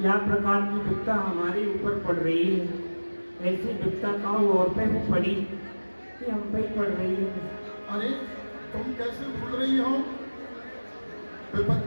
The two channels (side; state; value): both; inverted; correlation -1.00